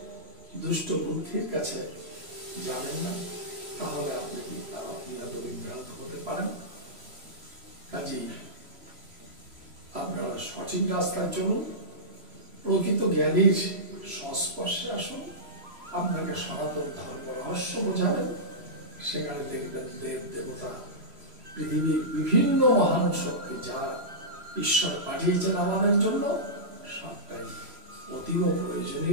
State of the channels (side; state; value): left; late; 3.0 ms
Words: দুষ্ট বুদ্ধির কাছে যাবেন না, তাহলে আপনি হয়তো বিভ্রান্ত হতে পারেন। কাজেই আপনারা সঠিক রাস্তায় চলুন, প্রকৃত জ্ঞানীর সংস্পর্শে আসুন, আপনাকে সনাতন ধর্ম রহস্য বোঝাবেন। সেখানে দেখবেন দেব দেবতা, পৃথিবীর বিভিন্ন মহান শক্তি যা ঈশ্বর পাঠিয়েছেন আমাদের জন্য, সবটাই অতীব